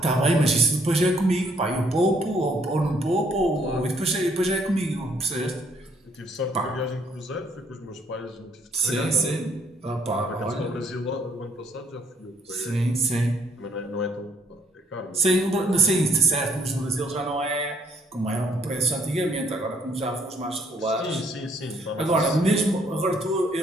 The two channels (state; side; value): normal; both; correlation 0.66